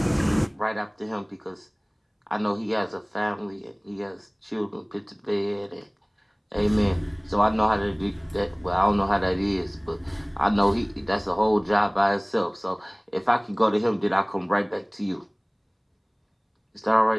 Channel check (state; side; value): identical; both; correlation 1.00